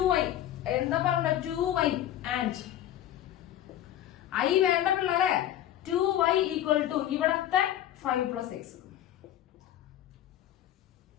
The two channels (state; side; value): quieter; right; 12.1 dB